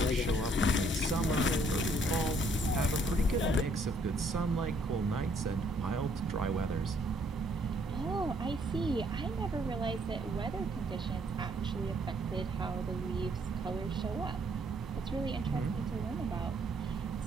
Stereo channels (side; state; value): both; normal; correlation 0.66